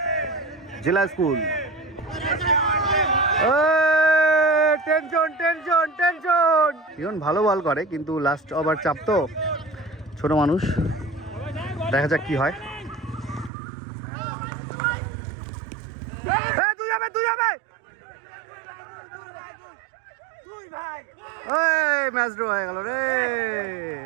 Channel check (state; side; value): drops out; left; at 13.5 s